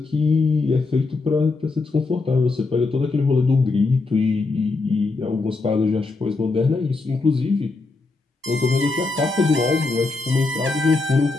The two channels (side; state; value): right; quieter; 3.7 dB